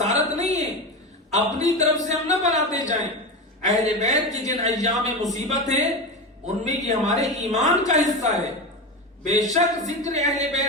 نہیں ہے، اپنی طرف سے ہم نہ بناتے جائیں۔ اہل بیت کی جن ایام مصیبت ہیں ان میں یہ ہمارے ایمان کا حصہ ہے۔ بے شک ذکر اہل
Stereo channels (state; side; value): normal; both; correlation 0.21